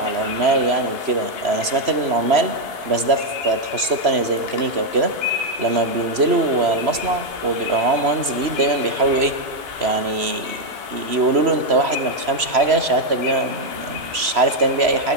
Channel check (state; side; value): late; left; 3.0 ms